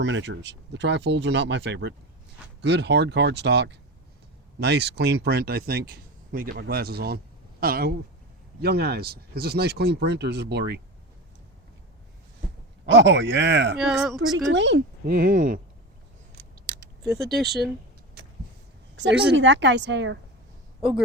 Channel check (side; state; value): both; normal; correlation 0.25